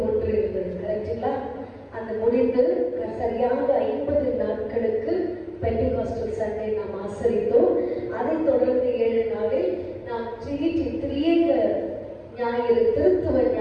இருந்தது, கரெக்டுங்களா? அந்த முடிந்து சரியாக 50 நாட்களுக்கு பெந்தெகோஸ்டல் சண்டே நாம் ஆசரித்தோம். அதைத் தொடர்ந்து 7 நாளில் நாம் ட்ரினிட்டி திரியேக ஞாயிறு, திருத்துவ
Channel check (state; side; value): identical; both; correlation 1.00